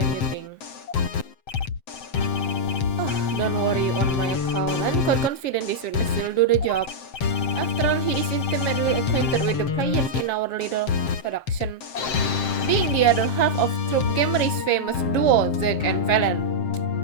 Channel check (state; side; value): late; right; 7.6 ms